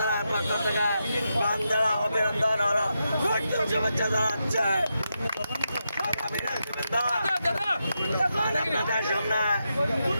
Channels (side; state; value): both; inverted; correlation -0.86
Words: পক্ষ থেকে বান্ধব অভিনন্দন ও শুভেচ্ছা জানাচ্ছে। আপনাদের সামনে